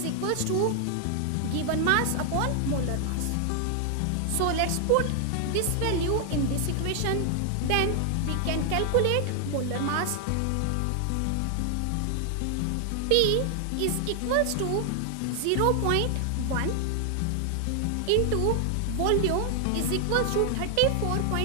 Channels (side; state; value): both; different; correlation 0.00